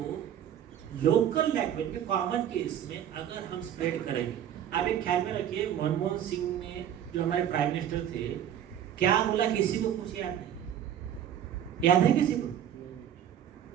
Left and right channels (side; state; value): left; quieter; 10.1 dB